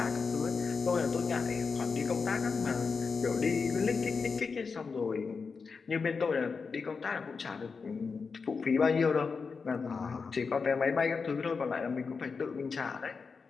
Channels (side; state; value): right; quieter; 5.0 dB